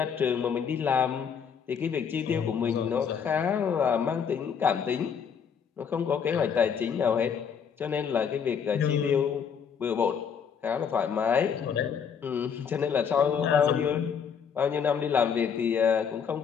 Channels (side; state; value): right; quieter; 7.1 dB